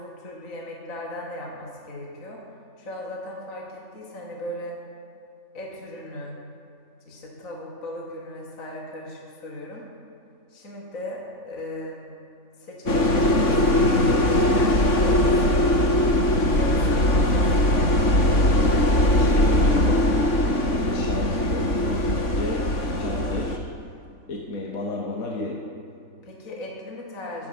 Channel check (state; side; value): late; right; 3.6 ms